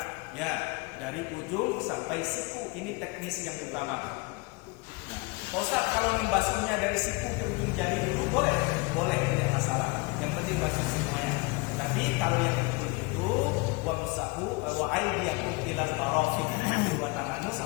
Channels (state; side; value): quieter; right; 26.4 dB